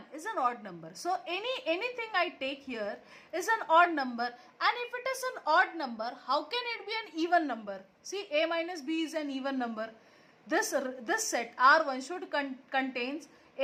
is an odd number. So anything I take here is an odd number, and if it is an odd number, how can it be an even number? See, A minus B is an even number. This set R1 should contains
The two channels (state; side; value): identical; both; correlation 1.00